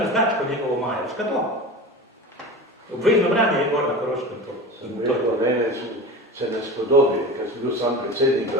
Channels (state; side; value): normal; both; correlation 0.31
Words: značko njegovo majo. Veš kaj to? Obvezno branje je gor na Koroškem to. Mene se ne spodobi, ker sem bil sam predsednik